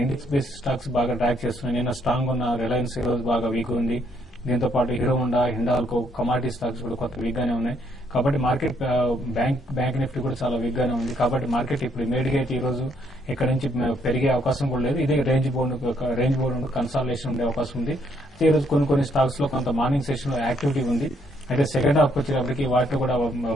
ఇండెక్స్ బేస్డ్ స్టాక్స్ బాగా ట్రాక్ చేస్తున్నాయి. నేను స్ట్రాంగ్ ఉన్న రిలయన్స్ ఈ రోజు బాగా వీక్ ఉంది. దీంతో పాటు hero Honda, Hindalco, commodity stocks కూడా కొంత వీక్ గానే ఉన్నాయి. కాబట్టి మార్కెట్ బ్యాంక్ నిఫ్టీ కూడా చాలా వీక్ గానే ఉంది. కాబట్టి మార్కెట్ ఇప్పుడు ఇమీడియట్ అయితే ఈ రోజు ఇక్కడ నుంచి పెరిగే అవకాశం కూడా లేదు. ఇదే రేంజ్ బోర్డు కన్సాలిడేషన్ ఉండే అవకాశం ఉంది. అయితే ఈ రోజు కొన్ని స్టాక్స్ లో కొంత మార్నింగ్ సెషన్ లో యాక్టివిటీ ఉంది. అయితే సెకండ్ హాఫ్ వచ్చేటప్పటికి వాటిలో కూడా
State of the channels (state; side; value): normal; both; correlation 0.70